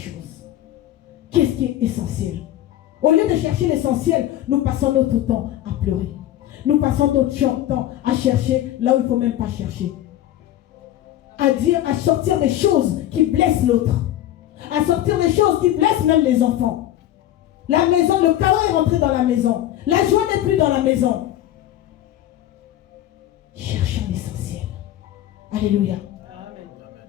Qu'est-ce qui est essentiel? Au lieu de chercher l'essentiel, nous passons notre temps à pleurer. Nous passons notre temps à chercher là où il ne faut même pas chercher. à dire, à sortir des choses qui blessent l'autre, à sortir des choses qui blessent même les enfants. La maison, le chaos est rentré dans la maison. La joie n'est plus dans la maison. Cherchons l'essentiel. Alléluia. Amen.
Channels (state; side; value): quieter; right; 13.1 dB